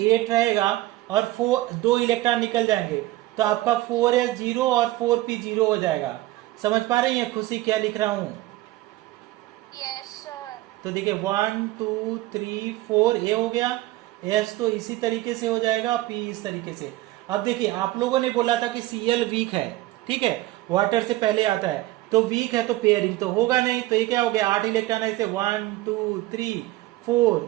रहेगा, और 2 इलेक्ट्रॉन निकल जाएंगे, तो आपका 4s0 और 4p0 हो जाएगा। समझ पा रही हैं खुशी क्या लिख रहा हूँ? Yes sir. तो देखिए 1 2 3 4 ए हो गया, एस तो इसी तरीके से हो जाएगा, पी इस तरीके से। अब देखिए आप लोगों ने बोला था कि Cl वीक है, ठीक है, वाटर से पहले आता है, तो वीक है तो पेयरिंग तो होगा नहीं, तो ये क्या हो गया 8 इलेक्ट्रॉन ऐसे 1 2 3 4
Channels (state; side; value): quieter; left; 17.4 dB